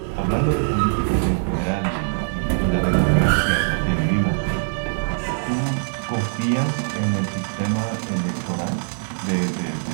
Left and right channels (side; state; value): left; silent; 64 dB below the other